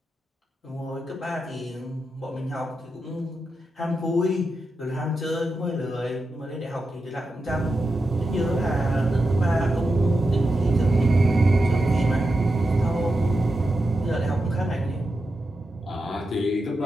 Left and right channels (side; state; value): both; normal; correlation 0.88